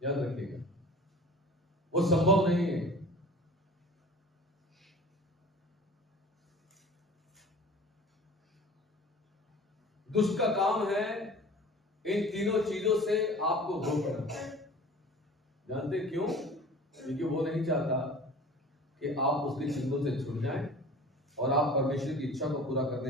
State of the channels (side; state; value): both; normal; correlation 0.42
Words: याद रखिएगा, वो संभव नहीं है। दुष्ट का काम है इन तीनों चीजों से आपको रोकना। जानते क्यों? क्योंकि वो नहीं चाहता कि आप उसके चिंतों से छूट जाएं और आप परमेश्वर की इच्छा को पूरा